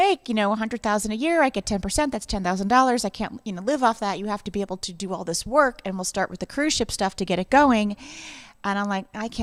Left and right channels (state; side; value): identical; both; correlation 1.00